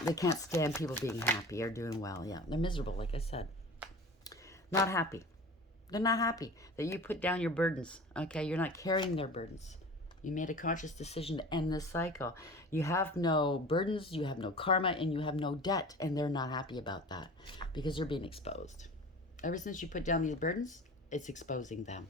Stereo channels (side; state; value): both; normal; correlation 0.39